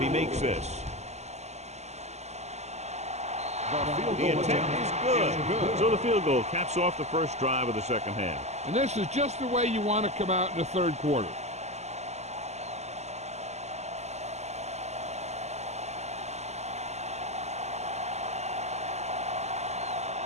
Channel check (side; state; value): left; late; 0.33 ms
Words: he makes this. The attempt is good. So the field goal caps off the first drive of the second half. And this is just the way you want to come out in the third quarter.